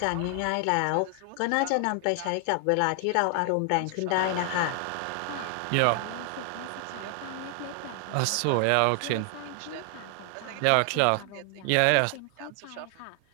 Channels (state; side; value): different; both; correlation 0.00